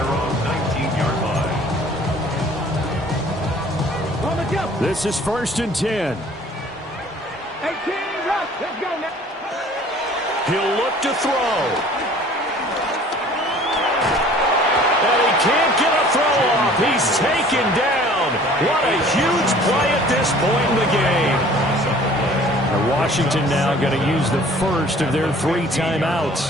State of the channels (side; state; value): both; normal; correlation 0.51